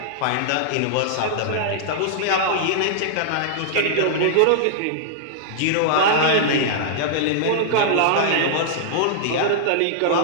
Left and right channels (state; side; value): different; both; correlation -0.01